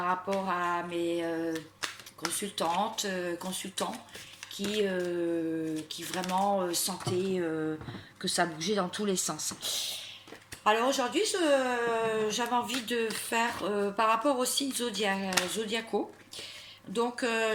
rapport à mes consultantes, consultants qui vraiment sentaient que ça bougeait dans tous les sens. Alors aujourd'hui, j'avais envie de faire par rapport aux signes zodiacaux. Donc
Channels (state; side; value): identical; both; correlation 1.00